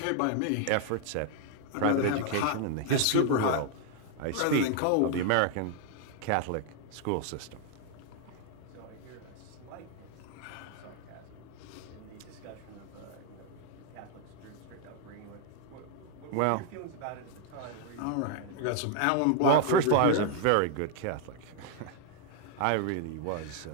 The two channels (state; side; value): different; both; correlation 0.00